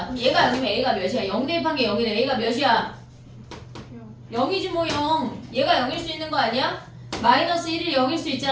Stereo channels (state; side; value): identical; both; correlation 1.00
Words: 그럼 얘가 0이면 a가 몇이야? 0 대입한 게 0이네. a가 몇이야? 0이지 뭐 0. 얘가 0일 수 있는 거 아니야? 마이너스 1이 0일 수